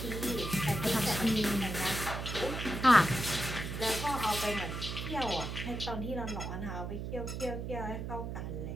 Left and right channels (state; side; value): noise; right; hum, 5 dB below the sound